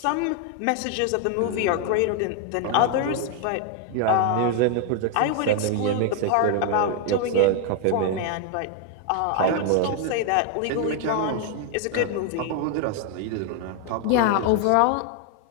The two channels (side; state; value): both; different; correlation 0.01